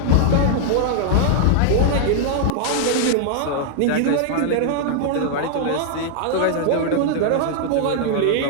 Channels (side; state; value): both; different; correlation -0.01